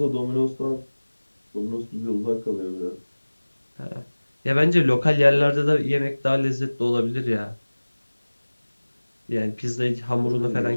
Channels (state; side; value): inverted; both; correlation -1.00